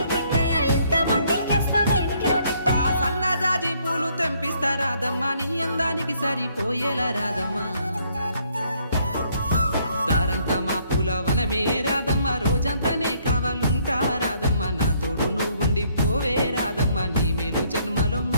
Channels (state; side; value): inverted; both; correlation -0.67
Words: సన్నజాజి పూలు తెంపిస్తా రాదమ్మ, నీ అందానికి సరిపోయేలా రాదమ్మ. దారంతా మా పూలవనమే రాదమ్మ, రోజంతానే కావాలుంటా రాదమ్మ, నా తోడు నువ్వుండి పోవే రాదమ్మ, నీ మేలు జన్మలో